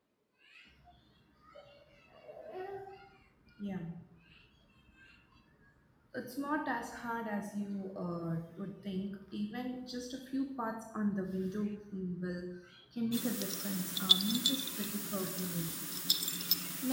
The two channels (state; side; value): identical; both; correlation 1.00